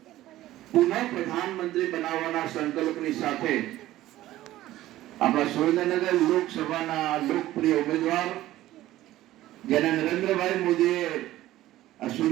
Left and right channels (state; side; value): quieter; left; 15.1 dB